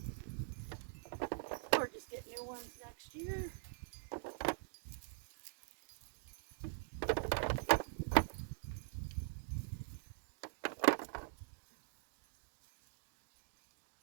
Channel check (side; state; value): left; silent; digital silence